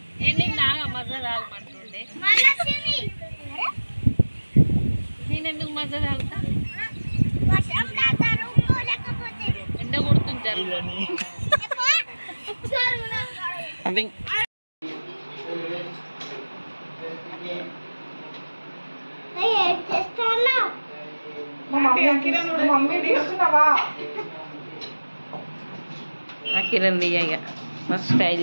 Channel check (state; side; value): inverted; both; correlation -1.00